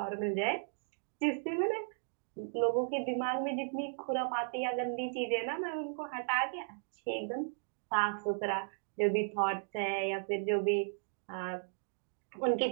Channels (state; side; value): silent; left; digital silence